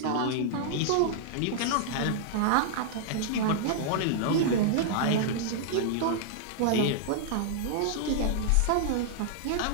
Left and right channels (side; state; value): both; different; correlation -0.01